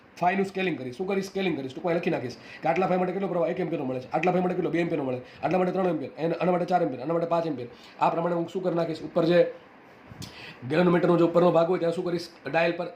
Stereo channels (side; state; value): both; identical; correlation 1.00